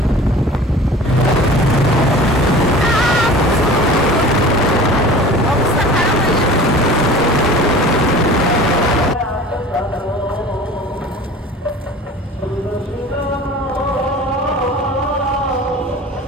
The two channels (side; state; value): both; normal; correlation 0.41